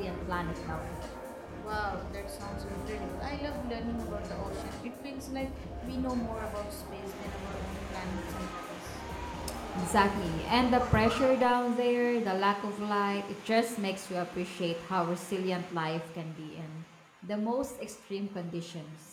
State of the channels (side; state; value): both; identical; correlation 1.00